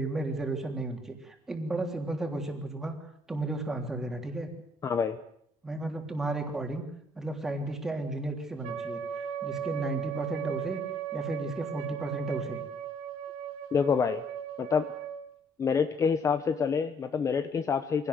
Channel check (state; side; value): normal; both; correlation 0.64